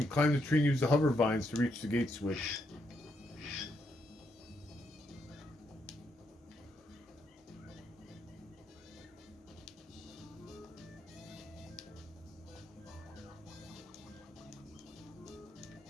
Climb the tree and use the hover vines to reach the gate switch.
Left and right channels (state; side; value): normal; both; correlation 0.78